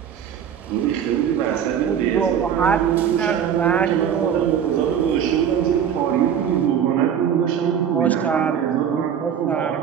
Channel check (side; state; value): left; quieter; 8.6 dB